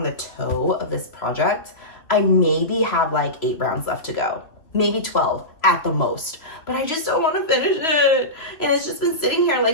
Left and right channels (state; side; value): late; right; 3.0 ms